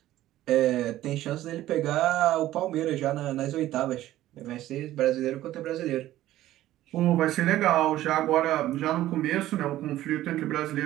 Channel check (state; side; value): quieter; left; 14.4 dB